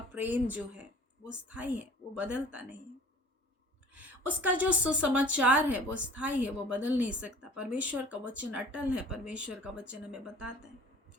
प्रेम जो है वो स्थायी है, वो बदलता नहीं है। उसका जो सुसमाचार है वो स्थायी है, वो बदल नहीं सकता। परमेश्वर का वचन अटल है, परमेश्वर का वचन हमें बताता है।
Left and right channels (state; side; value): normal; both; correlation 0.47